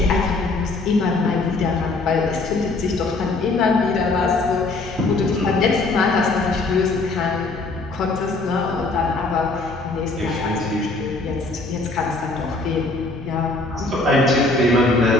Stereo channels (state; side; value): quieter; right; 3.3 dB